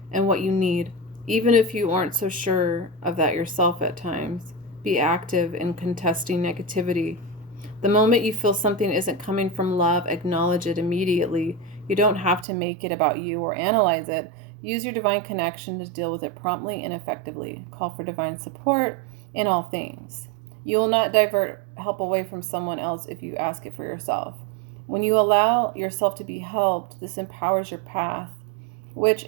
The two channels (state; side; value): drops out; left; at 12.5 s